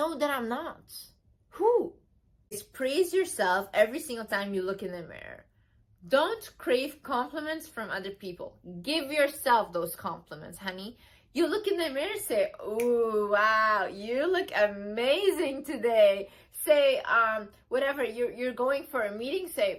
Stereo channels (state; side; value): identical; both; correlation 1.00